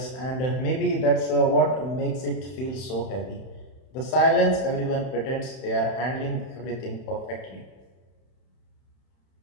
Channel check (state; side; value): late; right; 31 ms